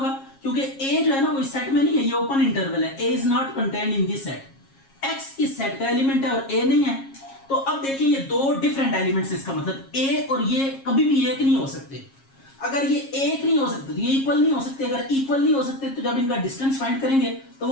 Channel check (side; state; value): right; late; 7.4 ms